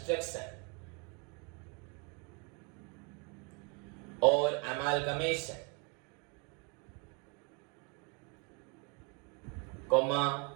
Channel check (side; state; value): left; quieter; 33.1 dB